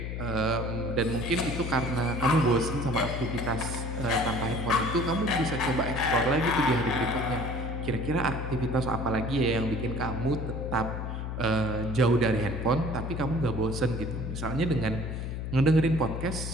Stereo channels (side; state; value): left; noise; hum, 4 dB below the sound